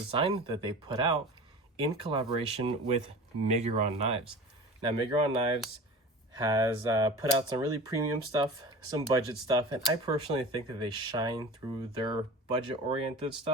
that they put out in collaboration with Miguron Knives. Now, Miguron Knives has put out some really premium stuff, some budget stuff, and I personally think that they shine through their budget-oriented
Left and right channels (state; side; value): normal; both; correlation 0.36